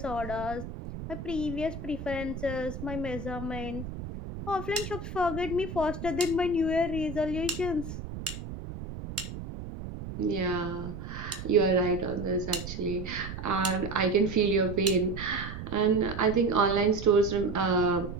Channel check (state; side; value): noise; right; rumble, 9 dB below the sound